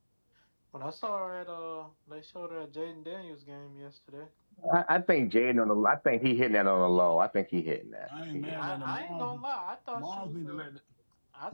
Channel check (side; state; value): both; inverted; correlation -1.00